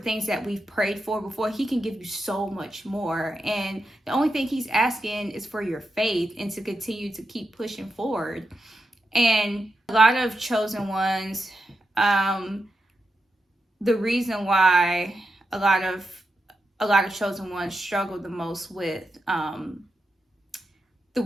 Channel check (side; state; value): both; normal; correlation 0.87